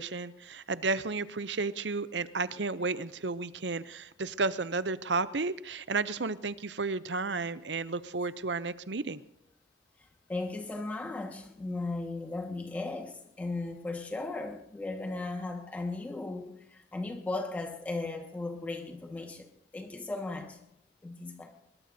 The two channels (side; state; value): both; normal; correlation 0.24